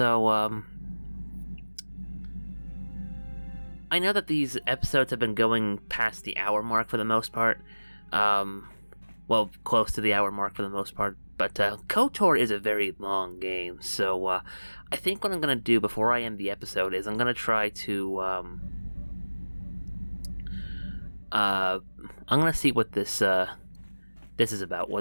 I know that these episodes have been going past the hour mark for the most part. Well, close to the hour mark for the most part. But KOTOR is a very long game, so I think what I'm going to do before I end the episode is I'm going to try to I'm gonna see what this is about.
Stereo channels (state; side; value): inverted; both; correlation -1.00